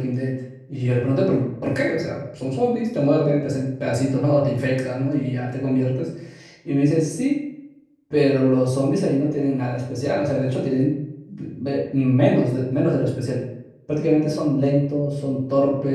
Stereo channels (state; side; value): identical; both; correlation 1.00